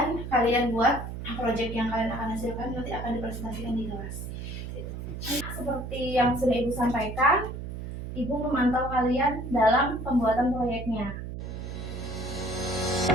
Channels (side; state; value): right; noise; hum, 7 dB below the sound